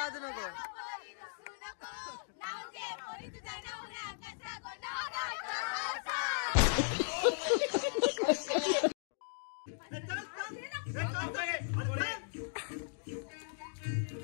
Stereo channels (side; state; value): right; silent; digital silence